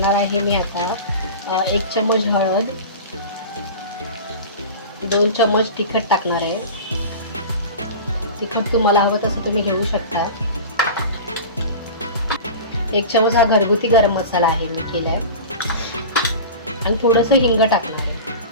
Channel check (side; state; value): both; inverted; correlation -0.32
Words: आहे मी आता 1 चम्मच हळद, 2 चम्मच तिखट टाकणार आहे. तिखट तुम्हाला हवं तसं तुम्ही घेऊ शकता. 1 चम्मच हा घरगुती गरम मसाला आहे मी केलाय. आणि थोडंसं हिंग टाकणार आहे.